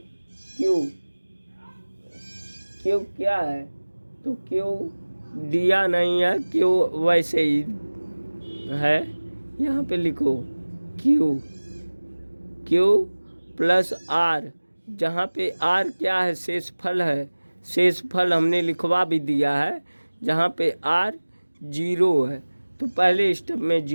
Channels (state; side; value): inverted; both; correlation -1.00